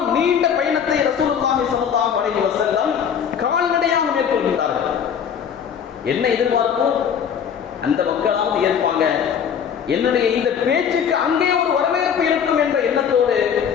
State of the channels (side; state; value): right; quieter; 7.8 dB